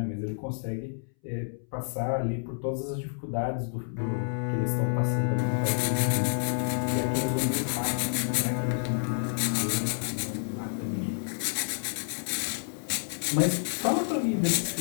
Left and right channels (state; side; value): silent; right; 58 dB below the other